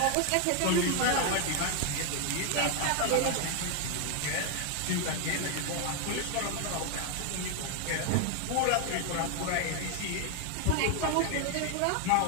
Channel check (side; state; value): both; different; correlation 0.01